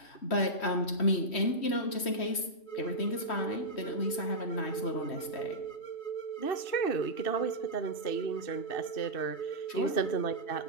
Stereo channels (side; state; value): right; late; 3.1 ms